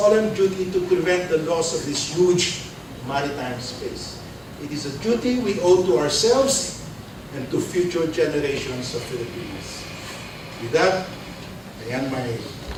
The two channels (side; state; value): both; identical; correlation 1.00